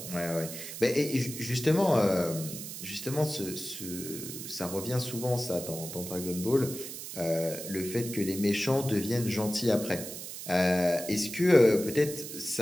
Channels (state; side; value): noise; right; hiss, 9 dB below the sound